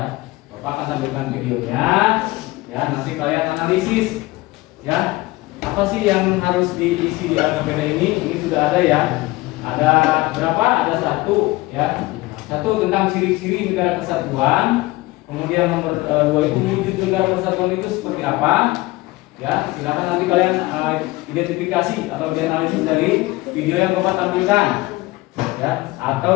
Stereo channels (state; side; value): quieter; right; 20.5 dB